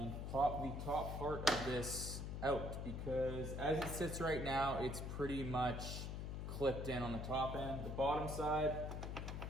pop the top part of this out, because as it sits right now, it's pretty much clipped in on the top end. The bottom side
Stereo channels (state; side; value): noise; left; hum, 4 dB below the sound